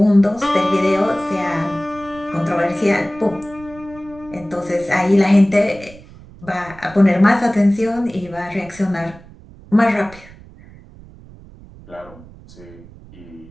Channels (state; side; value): noise; right; rumble, 21 dB below the sound